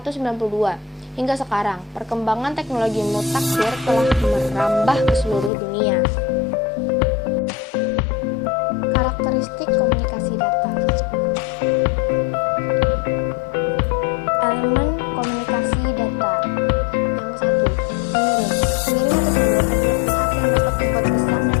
Hingga sekarang, perkembangan teknologi mutakhir telah merambah ke seluruh dunia. Karakteristik komunikasi data. Elemen komunikasi data. Yang satu, pengirim. Pengirim atau sender adalah pihak yang dapat membuat pesan dan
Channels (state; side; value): drops out; right; at 5.5 s